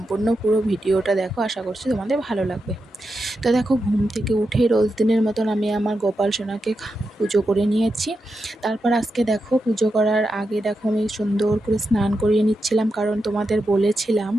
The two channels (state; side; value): normal; both; correlation 0.87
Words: পুরো ভিডিওটা দেখো, আশা করছি তোমাদের ভালো লাগবে। তো দেখো, ঘুম থেকে উঠে রোজ দিনের মতন আমি আমার গোপাল সোনাকে পুজো করে নিয়েছি। তারপর আজকে দেখো, পুজো করার আগে দেখো আমি সুন্দর করে স্নান করিয়ে নিচ্ছিলাম, কারণ তোমাদের বলেছিলাম